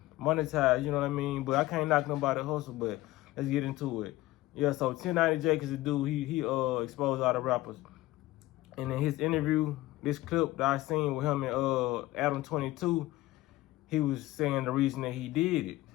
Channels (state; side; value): quieter; right; 17.6 dB